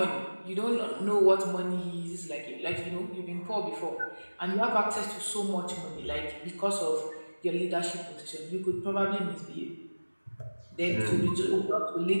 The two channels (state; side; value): inverted; both; correlation -1.00